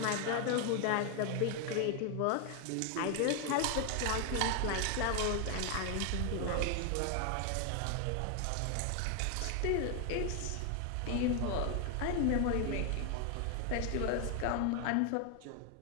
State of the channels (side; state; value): both; different; correlation 0.01